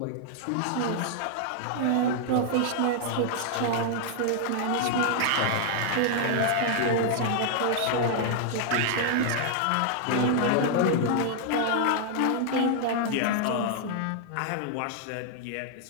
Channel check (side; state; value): both; different; correlation -0.01